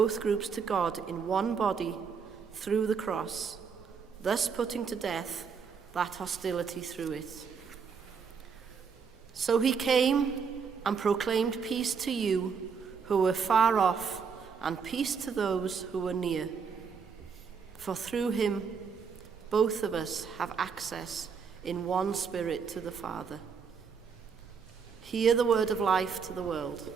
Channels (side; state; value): left; quieter; 6.1 dB